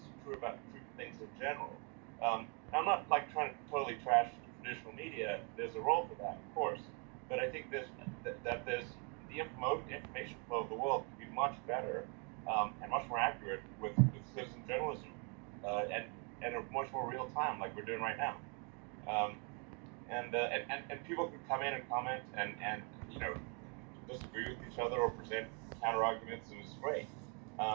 true about things in general. I'm not like trying to totally trash traditional media. There's a role for that, of course. But I think there's the information flow of the world can be much better and much more accurate with citizen journalism and a much more real time, like we're doing right now. And people can come in and comment and disagree with each other or present counter arguments, and it's great.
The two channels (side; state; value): left; quieter; 36.0 dB